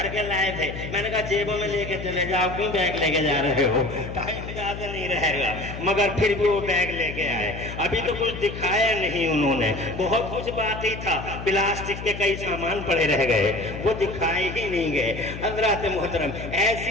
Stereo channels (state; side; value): noise; left; hum, 9 dB below the sound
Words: के लाए थे। मैंने कहा जेबों में लेके चले जाओ, क्यों बैग लेके जा रहे हो, टाइम ज्यादा नहीं रहेगा, मगर फिर भी वो बैग लेके आए। अभी तो कुछ दिखाया नहीं उन्होंने, बहुत कुछ बाकी था, प्लास्टिक के कई सामान पड़े रह गए, वो दिखाए ही नहीं गए। हज़रात मोहतरम, ऐसी